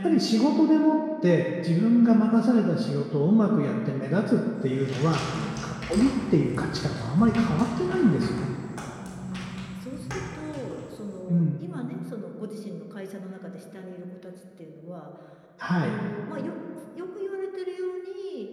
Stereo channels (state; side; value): identical; both; correlation 1.00